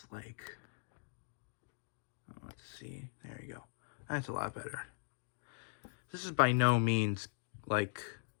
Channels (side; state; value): right; silent; digital silence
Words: like, let's see, there you go. That's a lot better. This is by no means like